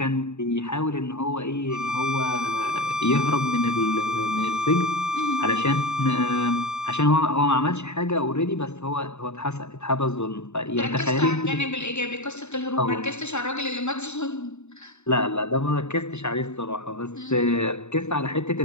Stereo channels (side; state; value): right; late; 0.82 ms